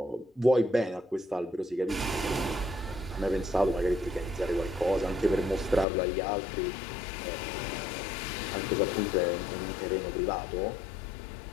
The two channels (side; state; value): right; drops out; at 5.9 s